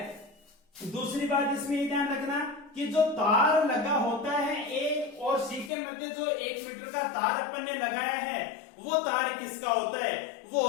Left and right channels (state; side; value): drops out; right; at 5.7 s